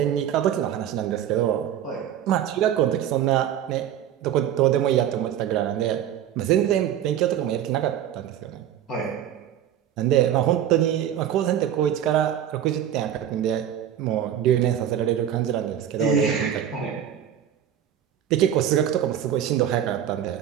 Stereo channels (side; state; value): left; quieter; 10.2 dB